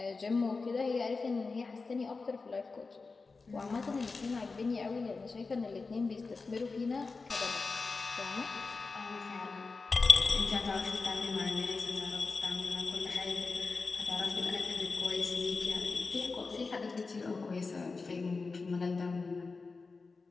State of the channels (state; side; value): quieter; right; 4.1 dB